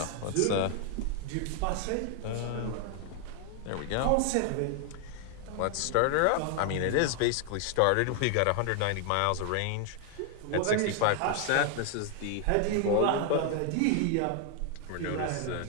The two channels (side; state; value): both; different; correlation 0.00